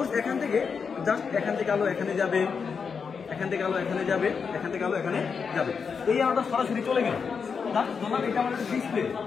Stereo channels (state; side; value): quieter; right; 5.9 dB